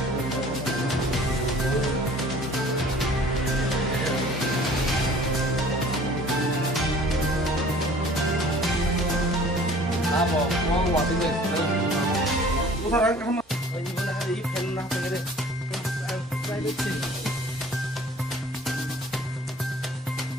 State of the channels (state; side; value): normal; both; correlation 0.49